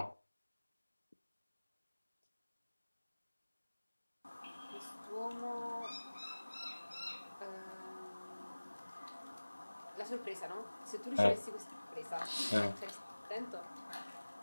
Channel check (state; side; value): inverted; both; correlation -1.00